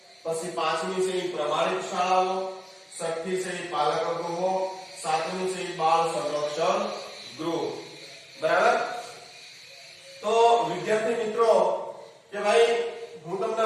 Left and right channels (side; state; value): both; identical; correlation 1.00